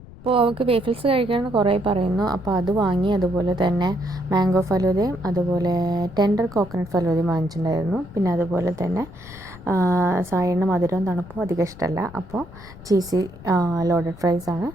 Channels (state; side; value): noise; left; rumble, 18 dB below the sound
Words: അപ്പോൾ അവൾക്ക് വേഫിൾസ് കഴിക്കണമെന്ന് കുറേ പറയുന്നു. അപ്പോൾ അത് വാങ്ങി, അതുപോലെ തന്നെ മാംഗോ ഫലൂദയും അതുപോലെ ടെൻഡർ കോക്കനട്ട് ഫലൂദയും വാങ്ങിച്ചിട്ടുണ്ടായിരുന്നു. പിന്നെ അതുപോലെ തന്നെ സായേട്ടന് മധുരവും തണുപ്പും അധികം ഇഷ്ടമല്ല. അപ്പോൾ ചീസി ലോഡഡ് ഫ്രൈസാണ്